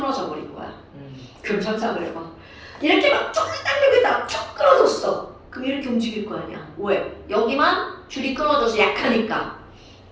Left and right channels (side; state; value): both; identical; correlation 1.00